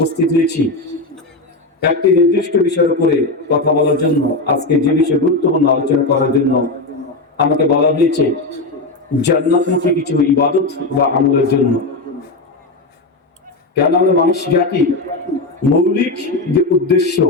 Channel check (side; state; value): right; quieter; 3.1 dB